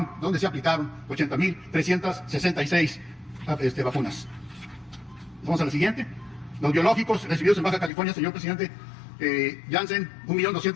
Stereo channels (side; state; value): right; drops out; at 7.9 s